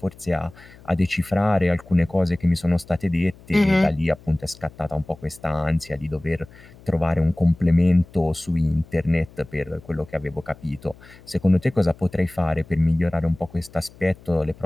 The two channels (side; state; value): left; noise; hum, 23 dB below the sound